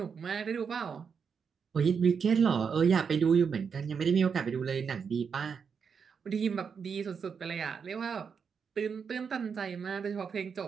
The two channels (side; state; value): left; quieter; 6.3 dB